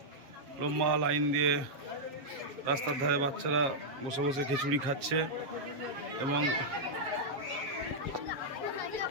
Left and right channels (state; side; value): late; left; 7.4 ms